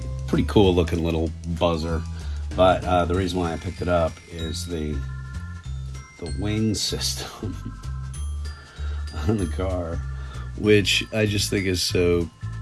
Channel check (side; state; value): both; identical; correlation 1.00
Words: cool looking little buzzer, but the reason why I picked it up is the wing system on the car, which I just think is so